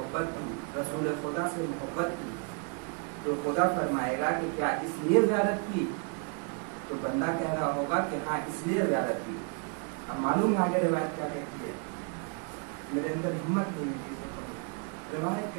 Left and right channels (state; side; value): quieter; left; 37.1 dB